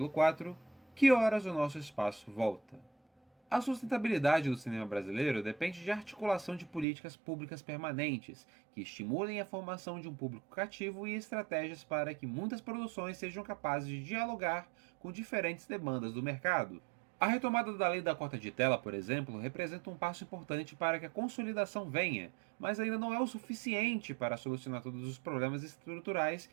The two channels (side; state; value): left; drops out; at 6.9 s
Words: 4: Que horas o nosso espaço volta? A sustentabilidade do cinema brasileiro depende de articulação de políticas públicas permanentes, que estimulem a formação de um público cativo e estratégias para que muitas produções sejam capazes de dialogar com diferentes demandas do mercado. A retomada da lei da cota de tela, por exemplo, representa um passo importante para que a consolidação venha, mas ainda não é o suficiente para solucionar todos os problemas estruturais